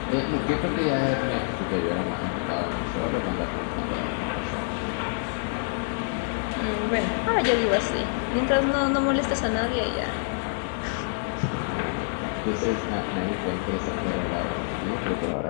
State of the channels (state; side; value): silent; right; digital silence